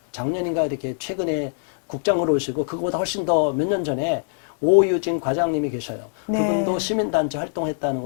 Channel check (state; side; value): silent; right; digital silence